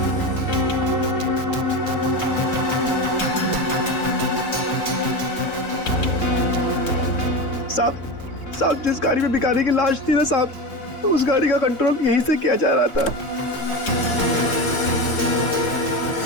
साहब जिस गाड़ी में भिखारी की लाश थी ना साहब, उस गाड़ी का कंट्रोल यहीं से किया जा रहा था।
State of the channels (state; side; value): late; right; 3.7 ms